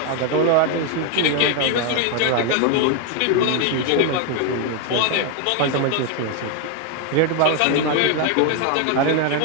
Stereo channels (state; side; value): different; both; correlation 0.01